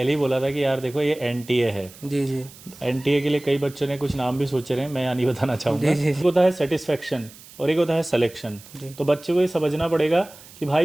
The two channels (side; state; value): right; noise; hiss, 20 dB below the sound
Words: ही बोला था कि यार देखो ये एनटीए है। जी जी एनटीए के लिए कई बच्चों ने कुछ नाम भी सोचे रहे हैं, मैं यहाँ नहीं बताना चाहूँगा। जी जी एक होता है सेटिस्फेक्शन और एक होता है सिलेक्शन। जी। तो बच्चे को ये समझना पड़ेगा कि